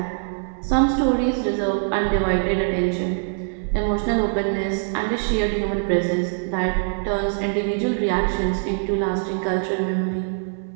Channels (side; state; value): left; silent; digital silence